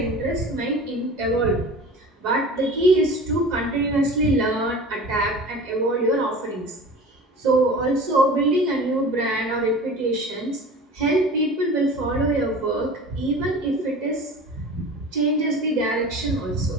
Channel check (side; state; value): both; normal; correlation 0.38